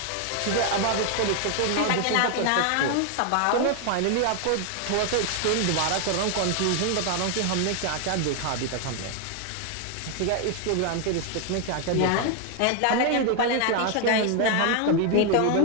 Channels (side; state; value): both; different; correlation 0.00